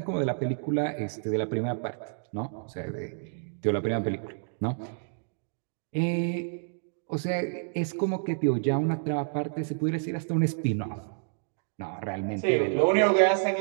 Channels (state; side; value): silent; left; digital silence